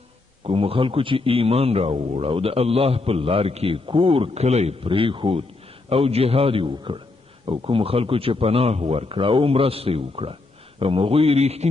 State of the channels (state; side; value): quieter; right; 3.4 dB